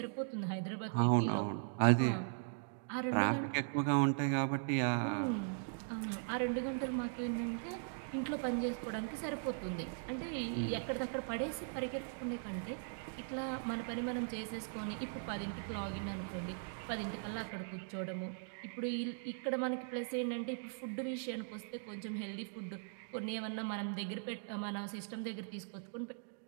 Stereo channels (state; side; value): silent; left; digital silence